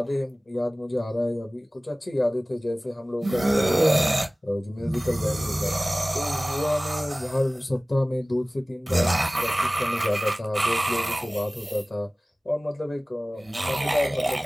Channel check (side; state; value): both; normal; correlation 0.98